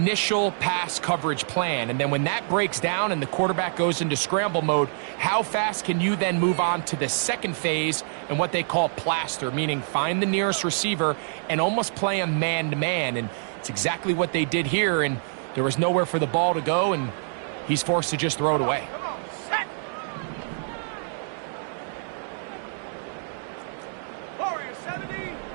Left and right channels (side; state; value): left; silent; digital silence